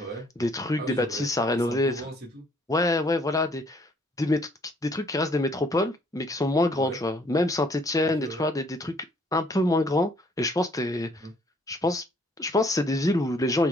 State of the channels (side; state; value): both; normal; correlation 0.63